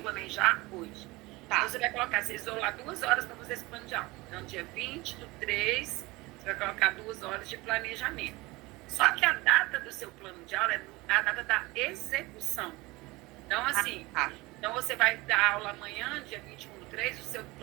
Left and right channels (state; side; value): quieter; left; 22.1 dB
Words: também já hoje. Tá. Então, você vai colocar, você isolar 2 horas para fazer esse plano de aula. Então, dia 20/3, você vai colocar 2 horas de planejamento. Só que a data do seu plano de aula é a data da execução. Então, assim, então você vai dar aula amanhã, dia 21/3, o seu